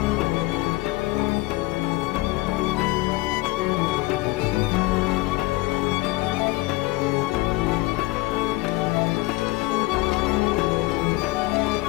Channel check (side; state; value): right; quieter; 20.8 dB